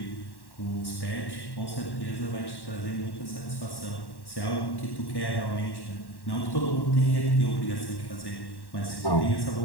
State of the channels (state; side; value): late; right; 1.1 ms